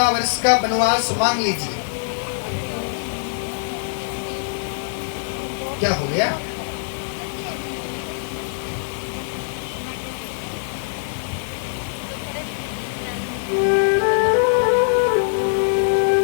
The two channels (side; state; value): right; silent; 64 dB below the other